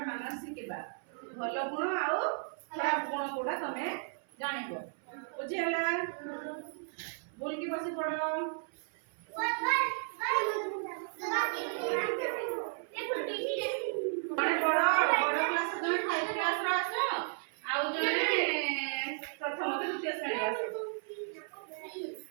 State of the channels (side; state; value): left; silent; 55 dB below the other